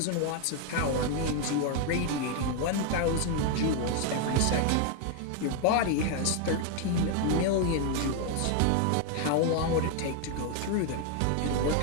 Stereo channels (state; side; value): different; both; correlation 0.01